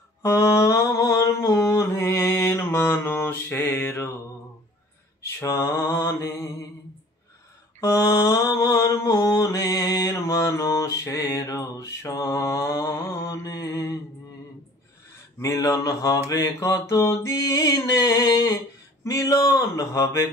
আমার মনের মানুষের সনে, আমার মনের মানুষের সনে। মিলন হবে কত দিনে, মিলন হবে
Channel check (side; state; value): both; normal; correlation 0.50